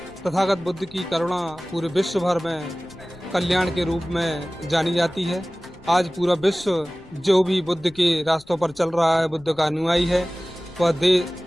तथागत बुद्ध की करुणा पूरे विश्व भर में कल्याण के रूप में जानी जाती है। आज पूरा विश्व जो भी बुद्ध के रास्तों पर चल रहा है, बुद्ध का अनुयायी है, वह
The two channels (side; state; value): left; noise; rumble, 24 dB below the sound